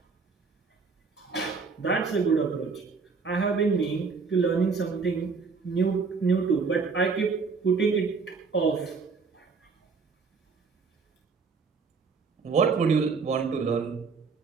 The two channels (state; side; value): quieter; left; 4.9 dB